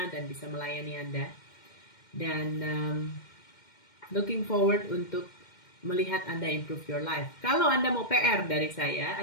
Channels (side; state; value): right; late; 2.1 ms